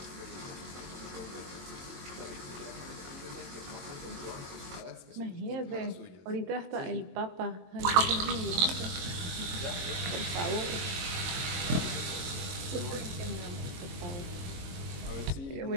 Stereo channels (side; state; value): left; late; 22 ms